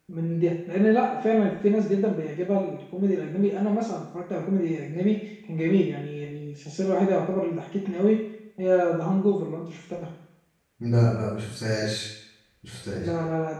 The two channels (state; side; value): identical; both; correlation 1.00